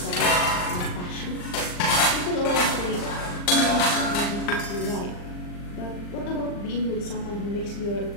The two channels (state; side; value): late; right; 40 ms